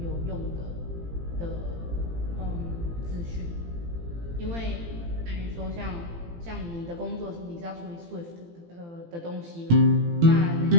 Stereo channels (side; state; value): left; late; 18 ms